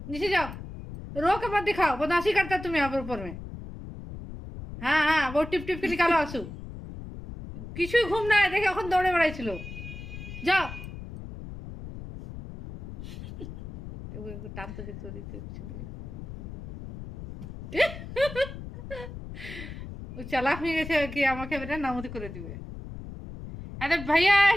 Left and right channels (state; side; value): noise; left; rumble, 11 dB below the sound